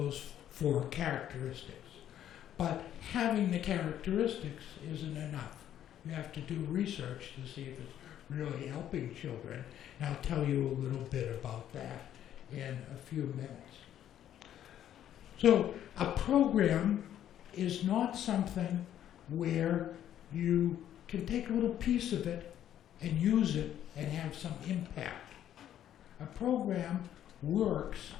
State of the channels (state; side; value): quieter; right; 11.0 dB